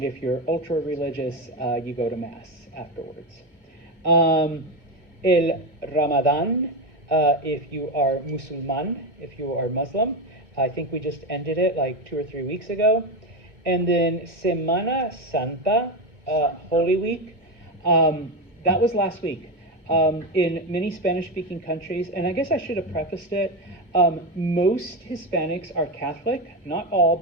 if you're ultra-religious, you go to Mass afterwards. El Ramadan, if you are Musulman, if you are Muslim. I think we just ended it like 2 or 3 weeks ago. And then Semana Santa, Holy Week. That was last week. In many Spanish-speaking countries, and I guess I should have prefaced it, most Hispanics are Catholic, not all,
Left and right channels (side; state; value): left; late; 1.7 ms